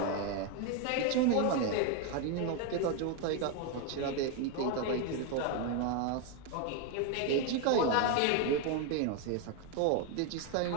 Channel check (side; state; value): both; different; correlation 0.01